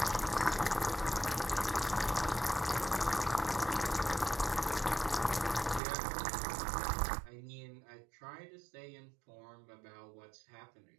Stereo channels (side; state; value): left; drops out; at 5.8 s